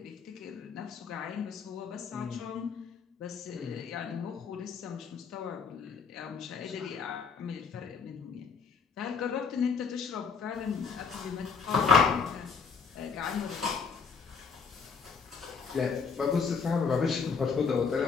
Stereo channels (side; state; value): right; quieter; 5.6 dB